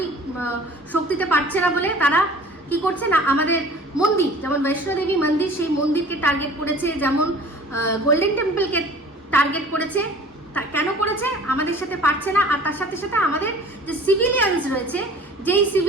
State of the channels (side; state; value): both; normal; correlation 0.47